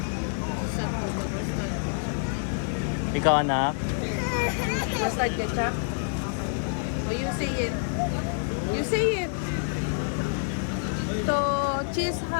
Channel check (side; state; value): right; silent; digital silence